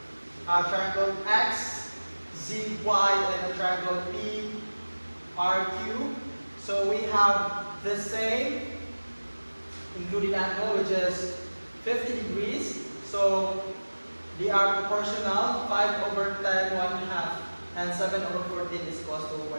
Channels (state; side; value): inverted; both; correlation -1.00